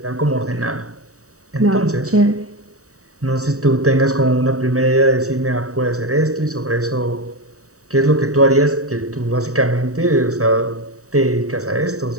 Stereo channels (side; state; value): left; late; 0.65 ms